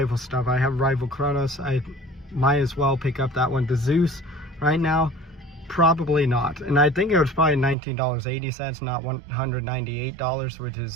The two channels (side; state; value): left; drops out; at 7.8 s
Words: stuff. I have rival Kronos. I might as well pick up that one. The Zeus, right now, Probably not. And I think it was probably $19.80, not $198, which